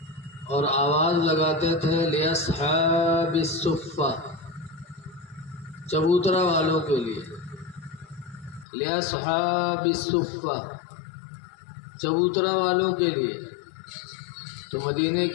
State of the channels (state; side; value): drops out; right; at 8.7 s